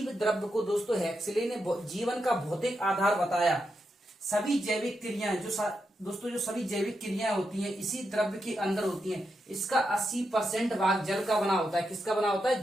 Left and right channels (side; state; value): both; normal; correlation 0.85